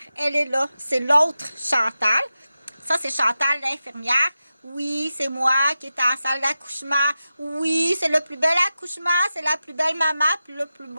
elle est là, c'est l'autre Chantal. Ça, c'est Chantal, l'infirmière. Oui, c'est moi qui est en salle d'accouchement. Oui, c'est le plus bel accouchement, c'est la plus belle maman, puis le plus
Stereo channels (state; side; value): inverted; both; correlation -0.92